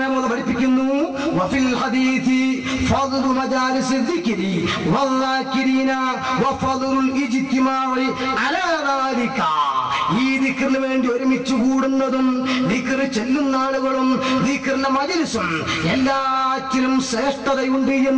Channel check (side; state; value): both; identical; correlation 1.00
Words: റളിയല്ലാഹു പഠിപ്പിക്കുന്നു, വഫിൽ ഹദീസി ഫദ്ലു മജാലിസ് ദിക്രി വദ്ദാകിരീന വഫദ്ലുൽ ഇജ്തിമാഇ അലാ ദാലിക. ഈ ദിക്റിന് വേണ്ടി ഒരുമിച്ച് കൂടുന്നതും ദിക്ർ ചെല്ലുന്ന ആളുകളും ദിക്റിന്റെ മജ്‌ലിസും എല്ലാറ്റിലും ശ്രേഷ്ഠതയുണ്ട്